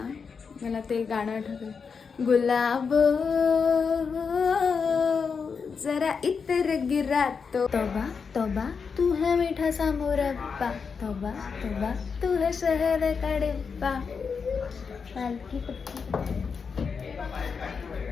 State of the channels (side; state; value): right; quieter; 5.7 dB